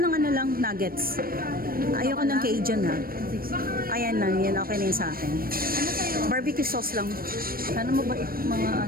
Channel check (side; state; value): left; late; 0.43 ms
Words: nuggets. Ayoko ng Cajun Ayan lang, yan okay na yun sa akin. Ano sa'yo? Barbecue sauce lang. Sana mabait mga